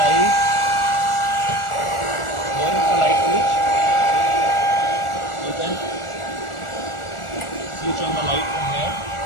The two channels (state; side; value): late; right; 1.4 ms